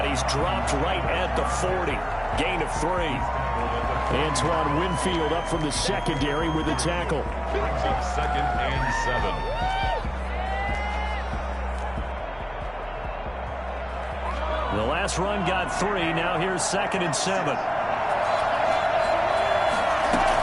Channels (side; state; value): both; identical; correlation 1.00